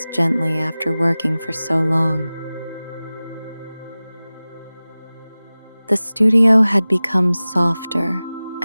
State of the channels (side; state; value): both; inverted; correlation -0.97